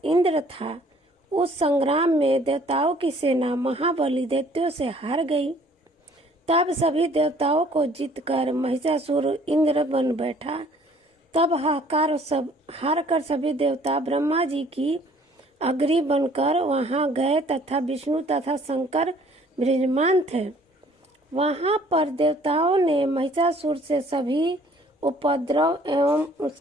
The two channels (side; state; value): both; normal; correlation 0.57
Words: इंद्र था। उस संग्राम में देवताओं की सेना महाबली दैत्यों से हार गई। तब सभी देवताओं को जीतकर महिषासुर इंद्र बन बैठा। तब हार कर सभी देवता ब्रह्मा जी की अग्नि बनकर वहां गए तथा विष्णु तथा शंकर विराजमान थे। वहां पर देवताओं ने महिषासुर से सभी उपद्रव एवं